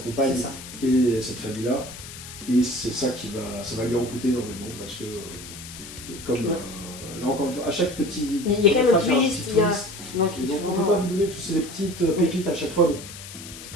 C'est ça. et cette famille-là. Et c'est ça ça va lui en coûter énormément parce que, comme là encore une fois, à chaque petit. Il y a quand même un phrase, il y a twist, petit il y a. twist. Donc, Et il donc faut on ne peut vraiment- pas vous donner parce que c'est des petites pépites à chaque fois. Donc,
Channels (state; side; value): noise; left; hiss, 13 dB below the sound